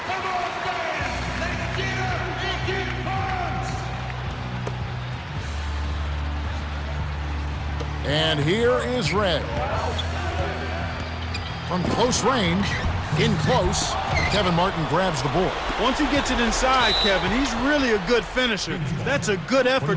And here is Red. From close range, in close, Kevin Martin grabs the ball. Once he gets it inside, Kevin, he's really a good finisher. That's a good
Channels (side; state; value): both; identical; correlation 1.00